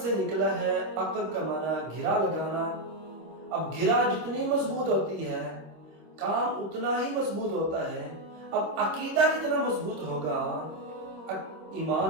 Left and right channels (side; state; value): left; late; 26 ms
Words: سے نکلا ہے، عقد کا معنی گھرا لگانا۔ اب گھرا جتنی مضبوط ہوتی ہے کام اتنا ہی مضبوط ہوتا ہے۔ اب عقیدہ جتنا مضبوط ہوگا ایمان